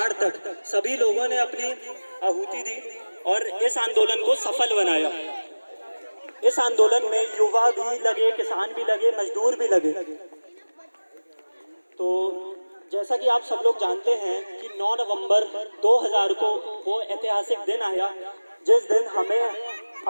तक सभी लोगों ने अपनी आहुति दी और इस आंदोलन को सफल बनाया। इस आंदोलन में युवा भी लगे, किसान भी लगे, मजदूर भी लगे। तो जैसा कि आप सब लोग जानते हैं कि 9 नवंबर 2000 को वो ऐतिहासिक दिन आया जिस दिन हमें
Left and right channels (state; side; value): inverted; both; correlation -1.00